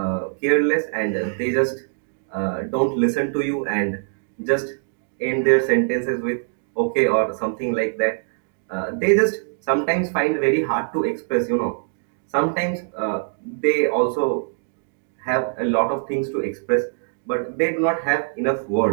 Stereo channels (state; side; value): silent; left; digital silence